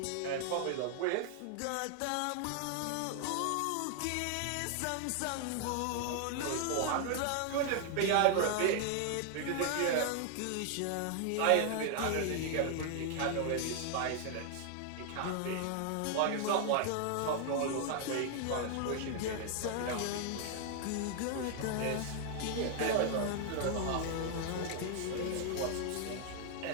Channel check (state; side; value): different; both; correlation 0.00